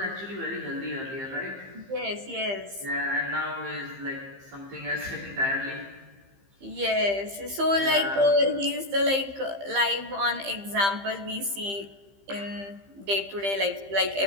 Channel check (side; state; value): left; late; 15 ms